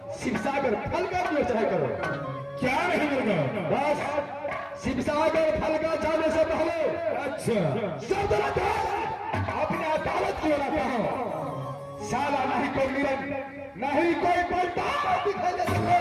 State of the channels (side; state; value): both; identical; correlation 1.00